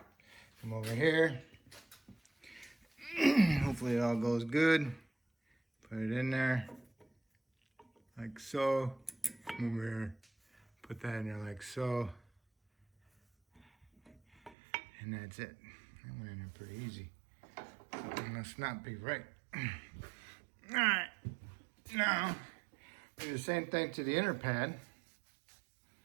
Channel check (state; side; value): drops out; left; at 14.6 s